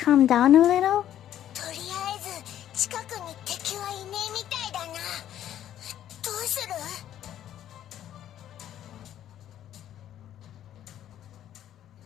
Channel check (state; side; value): quieter; right; 11.4 dB